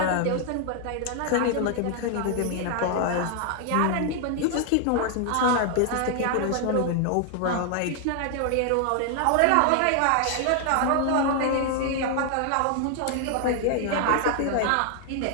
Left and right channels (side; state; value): both; different; correlation 0.00